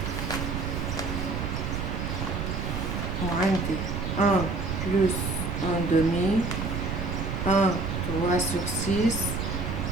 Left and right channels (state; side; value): noise; right; rumble, 2 dB below the sound